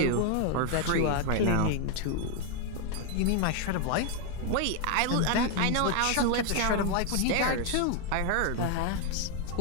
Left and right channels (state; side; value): different; both; correlation 0.01